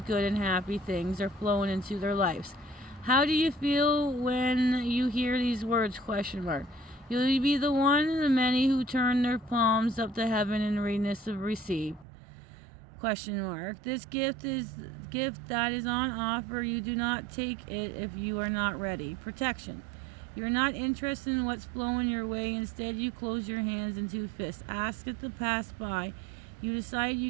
good and happy things are flowing into their lives. How do you feel when you hear these words? Question mark. You'll be the one of the many who turn their palms up to heaven in readiness of receive. Question mark. This gift that is on offer. You do not take it if you are not ready. Protection. You're not interested in what's flowing your way. Instead, you close your hands into fists. Ask it to pass by. You decide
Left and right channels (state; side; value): drops out; left; at 12.1 s